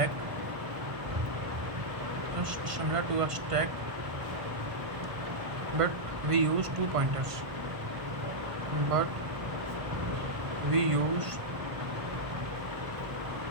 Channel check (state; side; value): late; left; 1.3 ms